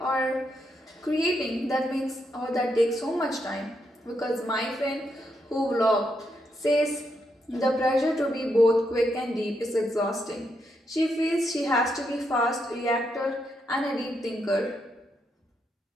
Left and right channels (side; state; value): both; normal; correlation 0.80